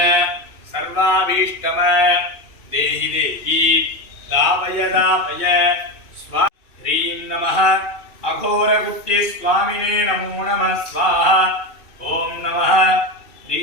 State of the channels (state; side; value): late; right; 2.7 ms